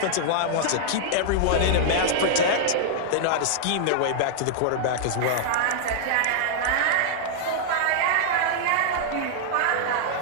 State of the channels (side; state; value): both; different; correlation -0.01